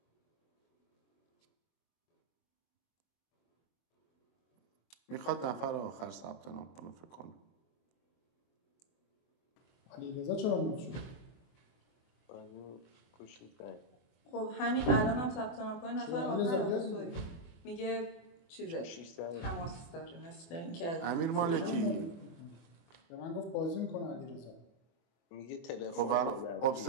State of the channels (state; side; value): late; right; 24 ms